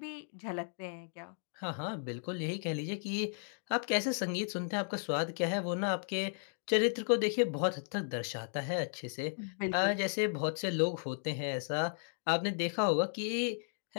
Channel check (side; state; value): right; silent; digital silence